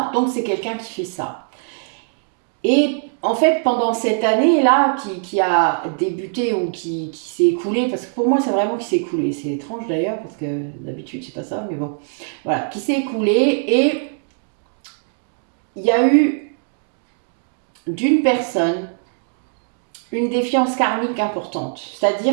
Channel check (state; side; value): silent; left; digital silence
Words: donc c'est quelqu'un qui fait ça. Et en fait, pendant cette année-là, qui a débuté ou qui s'est écoulée, parce que pour moi, c'est vraiment qui s'est écoulé. C'est étrange d'ailleurs, parce que d'habitude, c'est pas ça, mais bon. Voilà, qui s'est écoulée, et il y a eu d'une personne une défiance karmique importante.